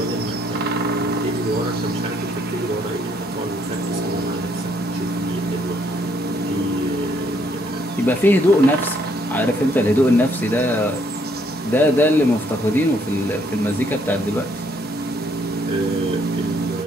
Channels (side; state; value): both; normal; correlation 0.69